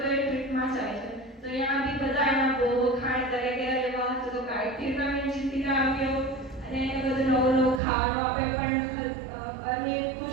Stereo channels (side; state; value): left; drops out; at 7.8 s